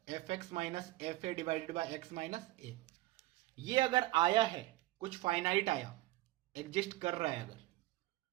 f x minus f a divided by x minus a. ये अगर आया है, कुछ फाइनाइट आया, एग्जिस्ट कर रहा है, अगर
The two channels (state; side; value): quieter; left; 17.8 dB